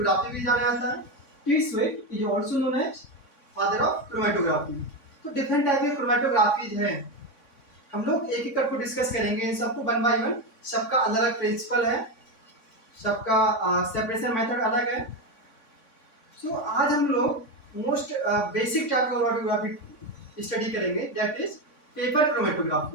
भी जाना जाता है। Tswett is also known as father of chromatography. तो डिफरेंट टाइप की क्रोमेटोग्राफीज हैं, हम लोग एक एक करके डिस्कस करेंगे इन सबको वन बाय वन। सबका अलग अलग प्रिंसिपल है, सबका सेपरेशन मेथड अलग है। आज हम लोग मोस्ट बेसिक टाइप का क्रोमेटोग्राफी स्टडी करेंगे, that is paper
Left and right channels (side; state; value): right; late; 3.6 ms